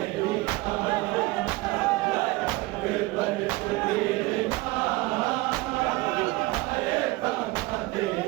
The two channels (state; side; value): quieter; left; 21.3 dB